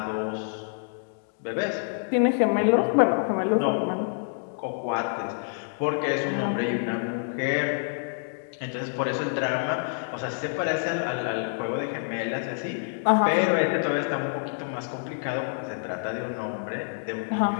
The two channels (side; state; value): right; silent; digital silence